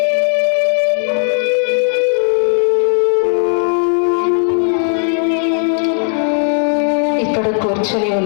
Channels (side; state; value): right; silent; 70 dB below the other